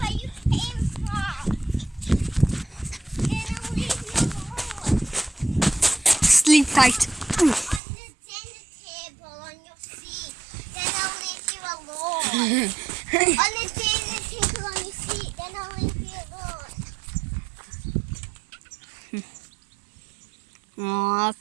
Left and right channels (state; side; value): drops out; left; at 7.8 s